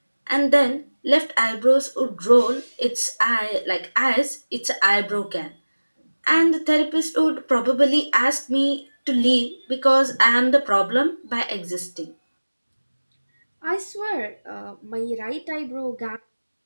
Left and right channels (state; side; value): inverted; both; correlation -1.00